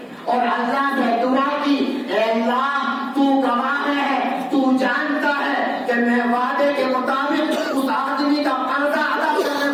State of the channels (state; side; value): identical; both; correlation 1.00